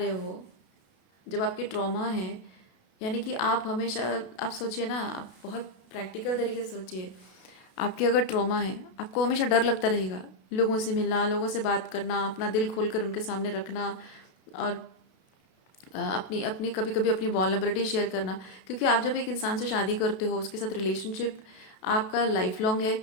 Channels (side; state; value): right; late; 32 ms